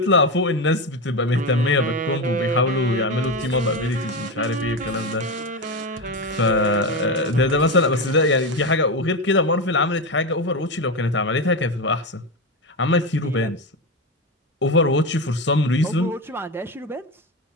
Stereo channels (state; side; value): normal; both; correlation 0.16